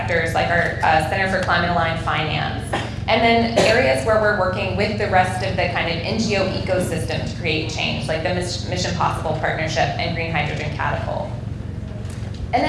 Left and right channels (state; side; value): identical; both; correlation 1.00